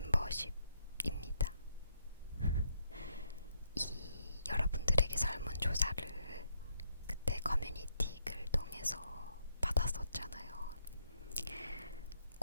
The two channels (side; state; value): both; inverted; correlation -0.75